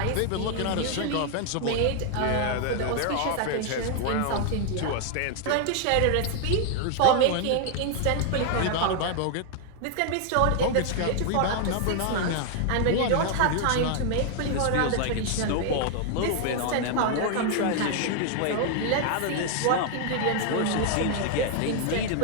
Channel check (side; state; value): both; different; correlation 0.00